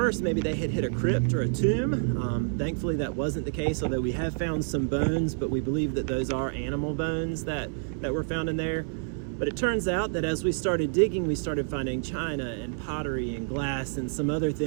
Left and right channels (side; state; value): left; silent; digital silence